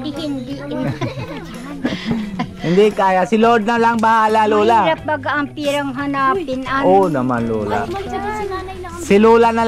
di hindi. Hindi kaya. Si Lord na lang bahala, Lola. Mahirap baga ang pirang hanapin. Oo naman, Lola. Si Lola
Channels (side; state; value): both; identical; correlation 1.00